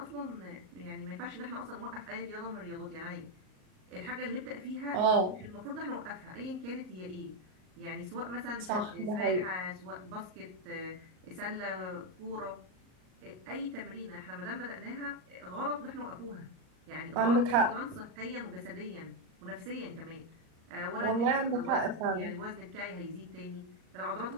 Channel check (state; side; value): late; left; 38 ms